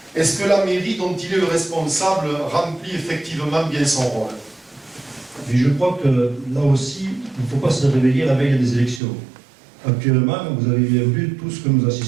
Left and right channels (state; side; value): drops out; left; at 9.0 s